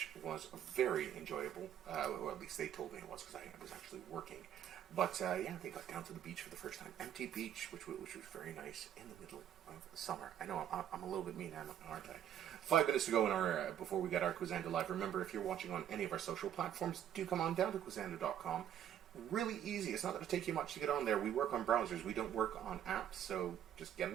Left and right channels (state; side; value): quieter; left; 10.1 dB